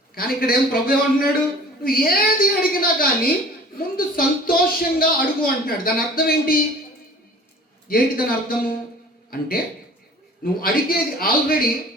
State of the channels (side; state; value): both; normal; correlation 0.46